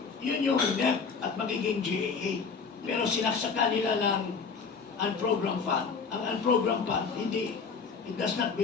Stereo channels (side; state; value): right; quieter; 5.4 dB